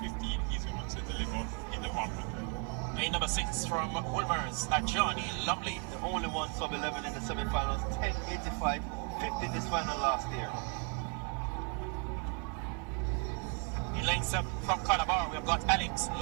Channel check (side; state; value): left; quieter; 38.1 dB